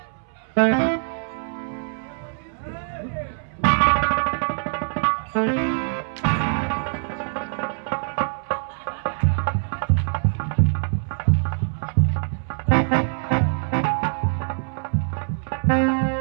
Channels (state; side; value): silent; left; 63 dB below the other